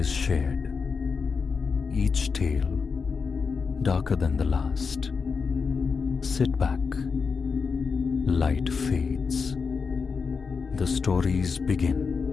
shared. Each tale darker than the last. Sit back. Light fades. The stories begin.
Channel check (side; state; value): right; quieter; 5.3 dB